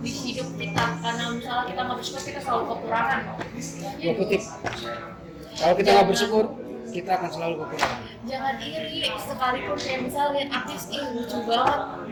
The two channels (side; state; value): both; identical; correlation 1.00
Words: di hidup kita, karena misalnya kita nggak bersyukur kita selalu kekurangan. Gue kutip, kalau kita nggak bersyukur kita akan selalu kekurangan. Jangan iri, sekalipun kayak misalnya lihat artis lucu banget,